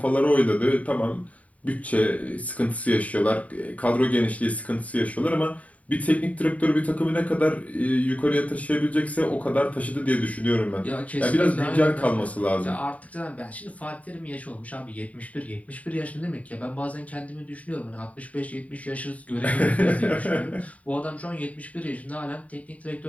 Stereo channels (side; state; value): right; late; 0.069 ms